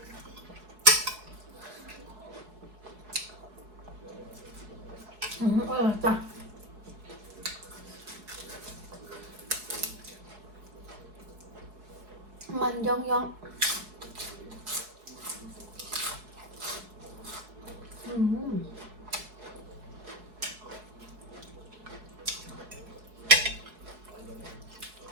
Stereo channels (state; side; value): late; left; 4.7 ms